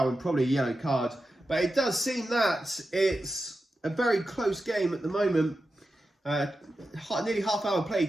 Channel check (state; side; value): normal; both; correlation 0.91